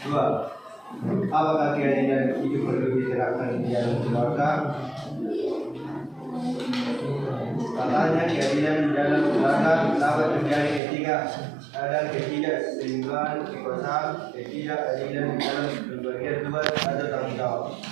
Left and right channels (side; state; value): left; drops out; at 10.8 s